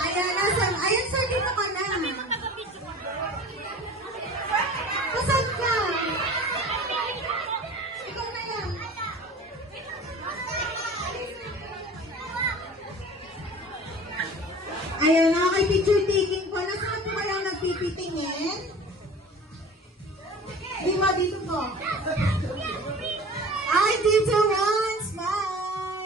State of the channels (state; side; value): normal; both; correlation 0.41